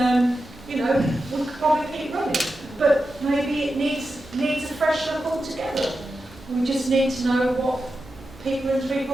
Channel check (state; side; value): normal; both; correlation 0.90